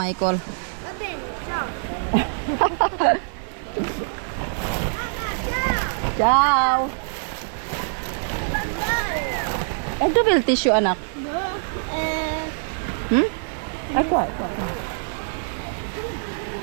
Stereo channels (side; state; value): left; silent; 63 dB below the other